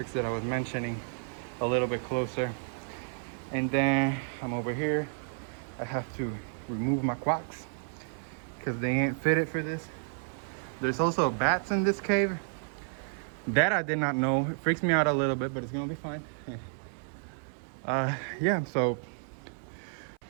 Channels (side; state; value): left; silent; 57 dB below the other